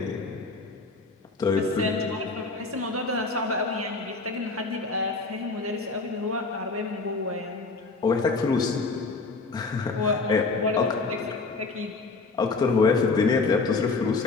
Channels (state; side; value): quieter; right; 3.9 dB